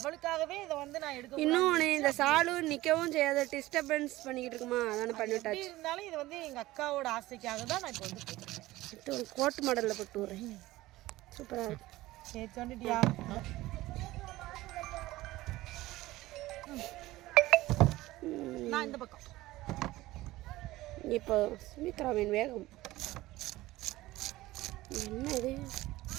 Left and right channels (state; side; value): quieter; left; 17.6 dB